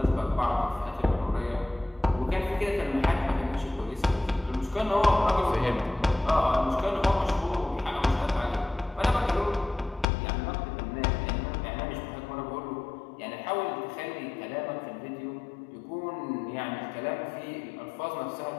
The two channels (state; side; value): drops out; right; at 10.1 s